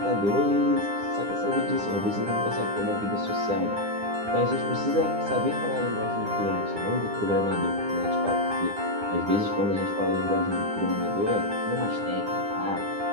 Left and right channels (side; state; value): left; late; 9.8 ms